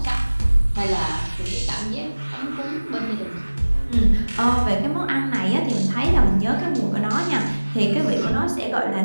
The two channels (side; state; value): both; inverted; correlation -1.00